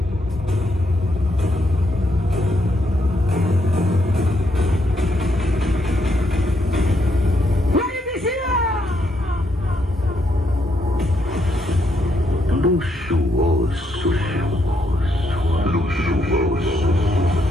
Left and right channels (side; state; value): both; normal; correlation 0.77